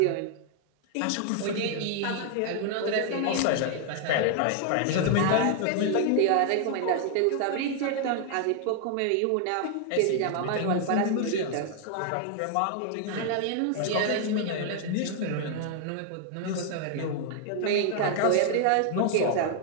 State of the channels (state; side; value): different; both; correlation 0.00